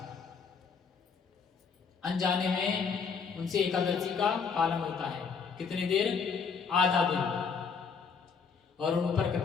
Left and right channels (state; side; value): quieter; right; 5.8 dB